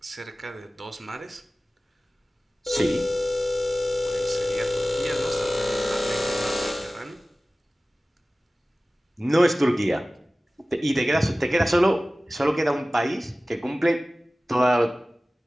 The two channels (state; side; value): normal; both; correlation 0.97